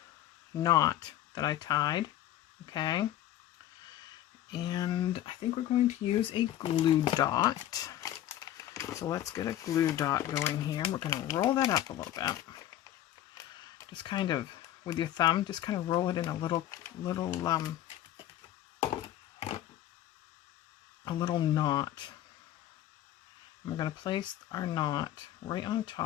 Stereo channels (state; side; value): quieter; right; 12.6 dB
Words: knot that I tied, okay? And I think we're going to use a glue dot. So let's get a glue dot going here. We're going to roll that up a little bit. Just kind of with your thumb, just kind of roll it in a little knot. And we're going to place our knot right on